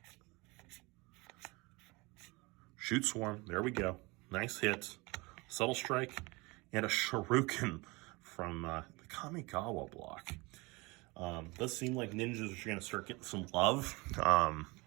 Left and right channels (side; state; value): left; quieter; 25.1 dB